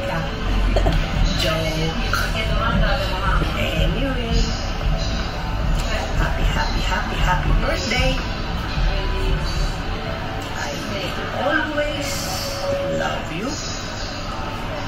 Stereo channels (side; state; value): both; identical; correlation 1.00